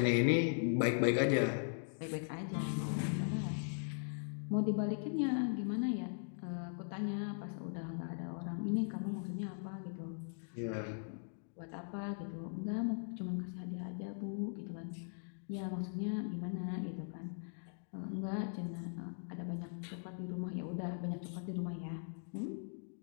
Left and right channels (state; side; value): silent; right; digital silence